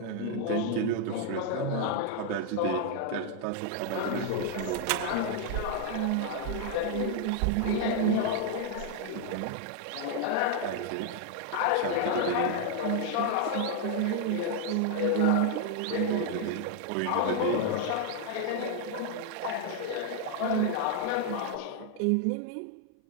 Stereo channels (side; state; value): both; different; correlation 0.00